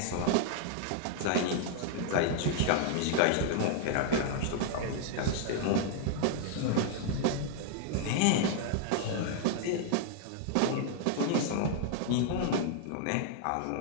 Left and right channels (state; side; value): different; both; correlation 0.00